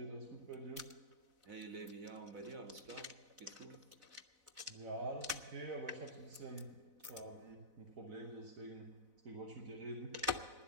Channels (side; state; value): left; late; 4.0 ms